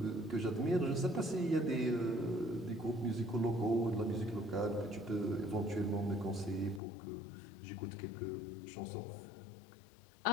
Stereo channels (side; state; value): right; drops out; at 6.8 s